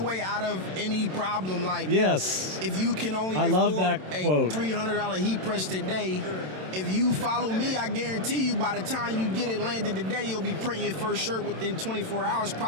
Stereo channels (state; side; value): late; left; 27 ms